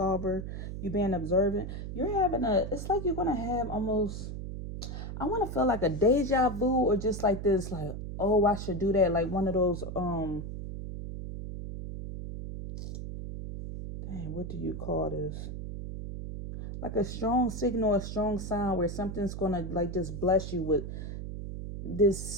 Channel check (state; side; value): noise; right; hum, 7 dB below the sound